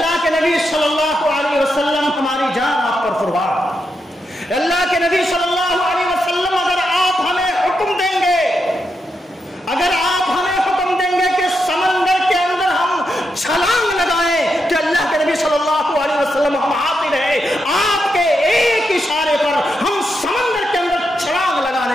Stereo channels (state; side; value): normal; both; correlation 0.84